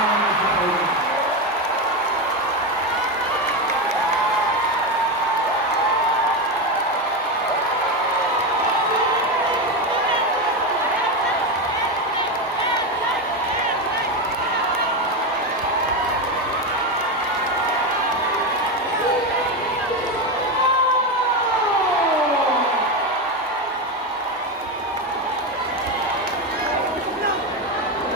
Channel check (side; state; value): both; normal; correlation 0.13